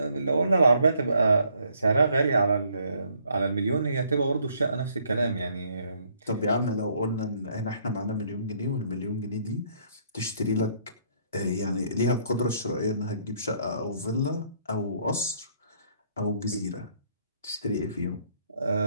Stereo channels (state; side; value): inverted; both; correlation -0.67